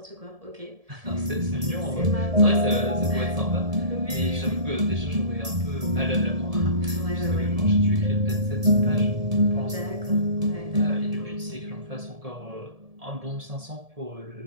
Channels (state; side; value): late; left; 1.7 ms